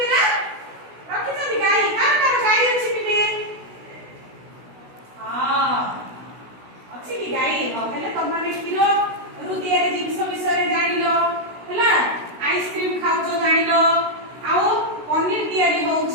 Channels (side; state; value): left; late; 16 ms